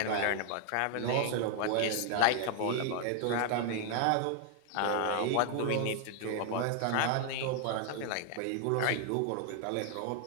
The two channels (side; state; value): both; different; correlation 0.00